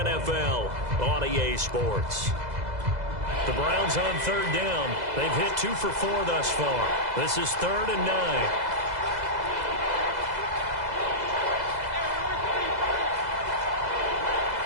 on EA Sports. The Browns on 3rd down. They've hit 2 for 4 thus far. This is 3rd and 9.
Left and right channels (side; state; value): left; late; 2.0 ms